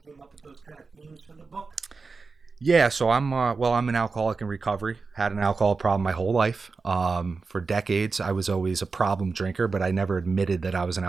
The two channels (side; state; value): left; quieter; 4.4 dB